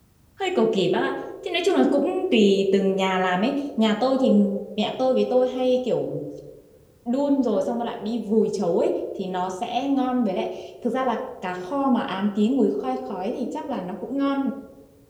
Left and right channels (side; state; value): both; identical; correlation 1.00